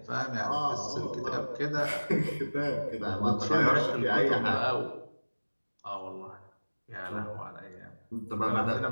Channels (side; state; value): both; inverted; correlation -1.00